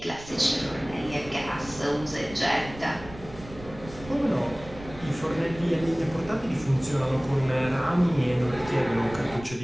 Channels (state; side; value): noise; right; rumble, 16 dB below the sound